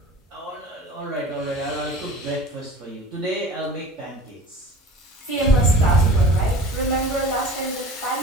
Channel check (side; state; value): both; normal; correlation 0.41